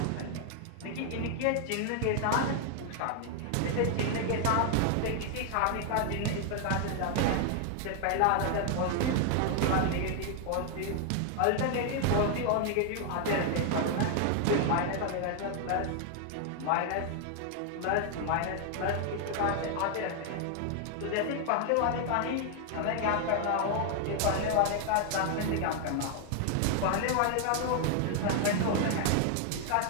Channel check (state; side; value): different; both; correlation 0.00